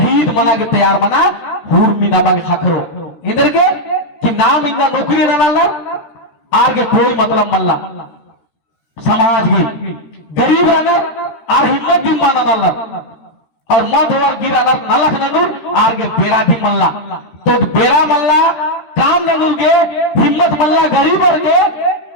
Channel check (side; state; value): right; late; 13 ms